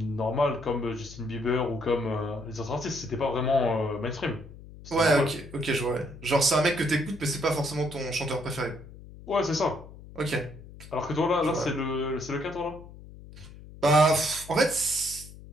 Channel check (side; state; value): left; noise; hum, 17 dB below the sound